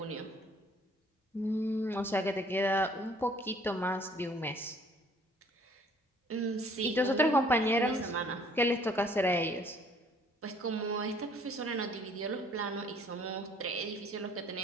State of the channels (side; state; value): both; normal; correlation 0.58